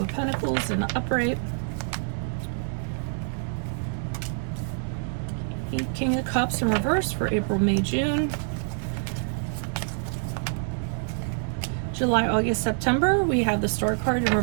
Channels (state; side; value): silent; left; digital silence